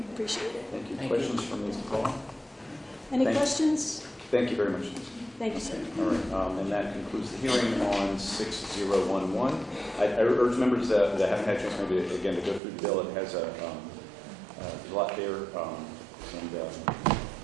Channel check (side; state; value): left; drops out; at 12.6 s